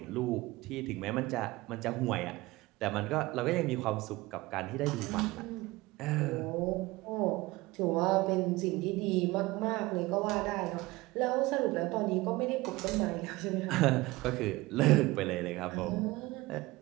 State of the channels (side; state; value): left; quieter; 20.6 dB